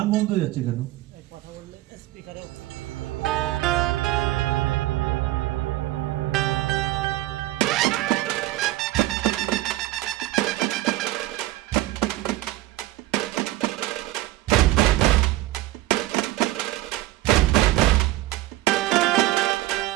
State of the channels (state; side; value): quieter; left; 17.0 dB